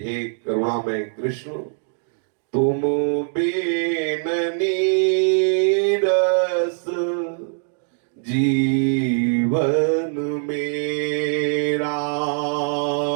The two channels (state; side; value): silent; left; 64 dB below the other